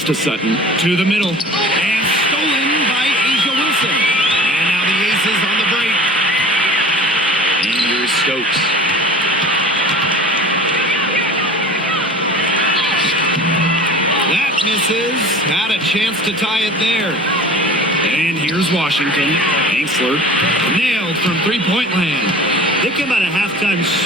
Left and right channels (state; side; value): normal; both; correlation 0.41